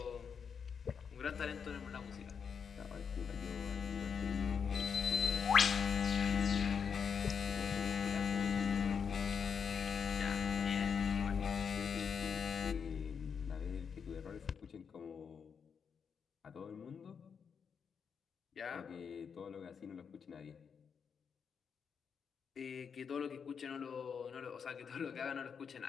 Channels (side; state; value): right; quieter; 6.6 dB